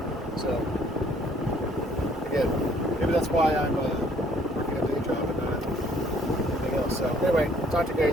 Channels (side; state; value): both; normal; correlation 0.61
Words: So, again, maybe that's why I'm working a day job and not anything else. So, anyway, talk to you